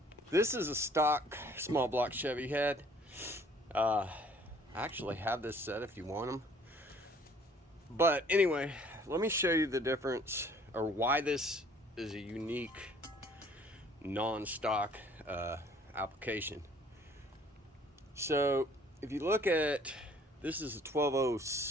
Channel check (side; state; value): both; normal; correlation 0.57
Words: This is a stock small block Chevy head. I actually have this set if you want them. But anyway, let me show you the difference or why this is a unique non-stock application. So if you look at, this is a